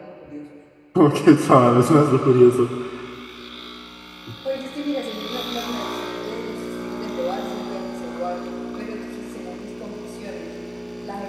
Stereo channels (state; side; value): identical; both; correlation 1.00